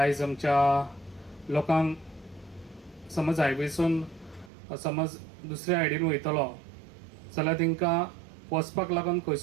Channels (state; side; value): drops out; left; at 4.5 s